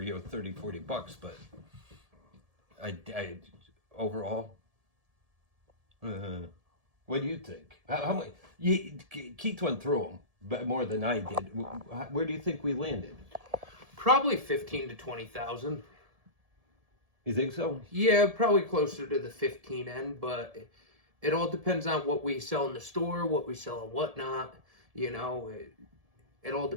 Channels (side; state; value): left; late; 1.7 ms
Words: $30-40, but I overall. What do you think? How much? Keith went through them, but more than I did. Where do you think we landed? Probably 15 to 20,000. You think so? Yeah, probably closer to the 15 end, but it all depends on what we sell in the store, what we sell and whatnot. It all